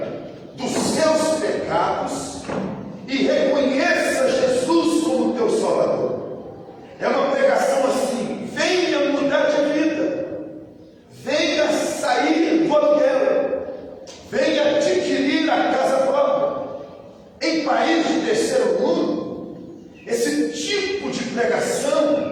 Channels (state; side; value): identical; both; correlation 1.00